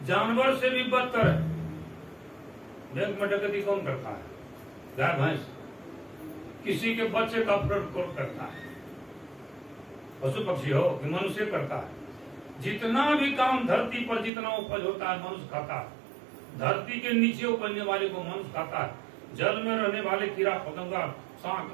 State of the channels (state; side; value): drops out; left; at 14.3 s